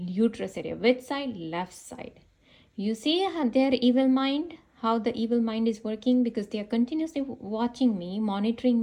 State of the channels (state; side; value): identical; both; correlation 1.00